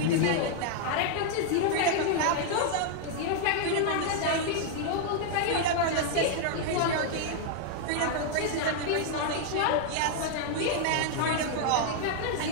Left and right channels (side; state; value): both; different; correlation 0.00